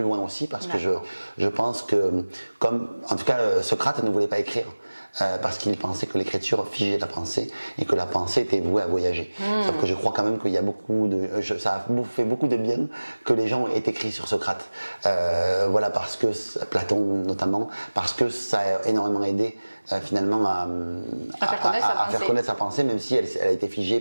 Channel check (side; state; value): both; inverted; correlation -1.00